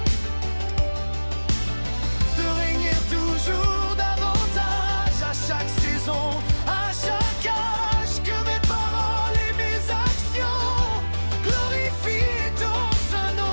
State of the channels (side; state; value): both; inverted; correlation -1.00